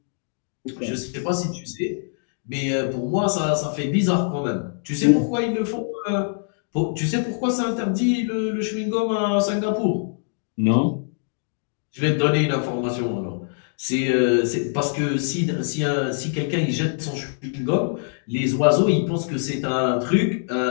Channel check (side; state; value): right; silent; digital silence